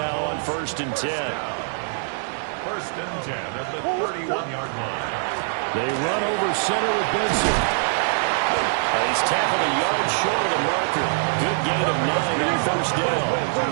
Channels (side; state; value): left; silent; digital silence